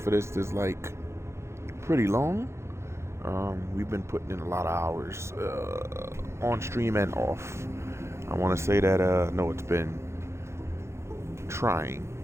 for this is like pretty long. We've been putting in a lot of hours on stream and off. I want to say that no, it's been trying.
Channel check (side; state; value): left; late; 0.13 ms